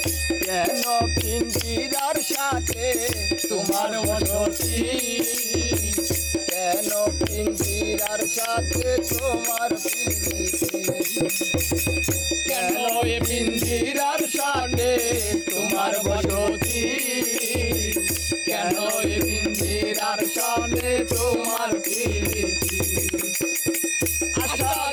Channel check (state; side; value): identical; both; correlation 1.00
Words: কেন পিঞ্জিরার সাথে তোমার বসতি কেন পিঞ্জিরার সাথে তোমার প্রীতি কেন এ পিঞ্জিরার সাথে তোমার বসতি কেন এ পিঞ্জিরার সাথে তোমার প্রীতি আসা